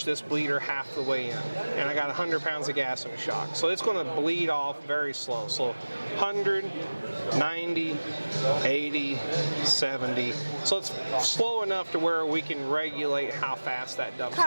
this bleeder half the way in, and I got 100 pounds of gas in the shock. So it's going to bleed off very slow. So 100, 90, 80, 70. So it's slow enough to where we can regulate how fast that dumps out.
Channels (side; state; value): both; inverted; correlation -1.00